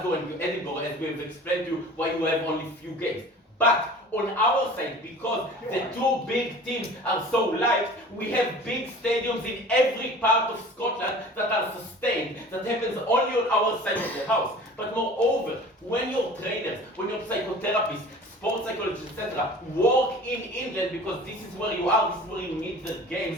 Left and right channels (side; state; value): both; normal; correlation 0.42